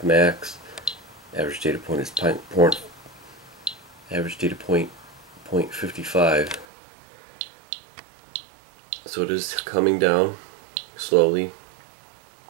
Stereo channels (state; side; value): drops out; left; at 6.7 s